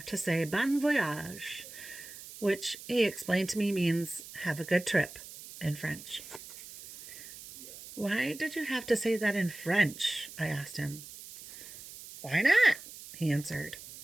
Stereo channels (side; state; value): right; noise; hiss, 15 dB below the sound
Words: to say bon voyage, which he explained to me means have a good trip in French. Why did you have to say that in French? I asked him. Why not? He answered.